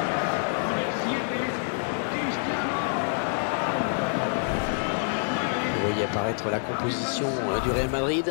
Vous voyez apparaître la composition du Real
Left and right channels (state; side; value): silent; right; digital silence